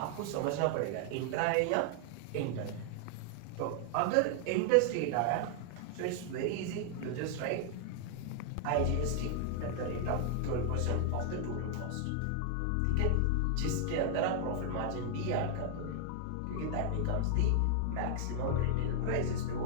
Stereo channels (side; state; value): both; different; correlation 0.00